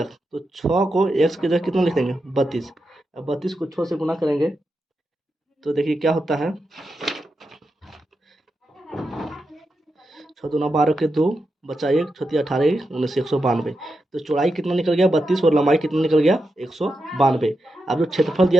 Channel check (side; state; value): both; normal; correlation 0.87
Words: तो 6 को x की जगह कितना लिख देंगे 32। अब 32 को 6 से गुना करेंगे तो देखिए क्या होता है, 6 दूना 12 के 2, बचा 1, 6 18 19, 192। तो चौड़ाई कितना निकल गया 32, और लंबाई कितना निकल गया 192। अब जो क्षेत्रफल